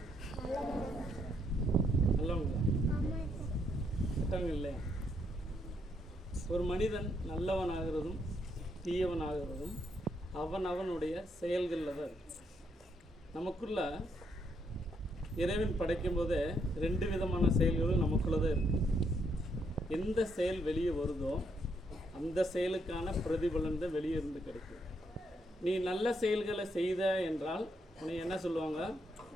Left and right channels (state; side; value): normal; both; correlation 0.75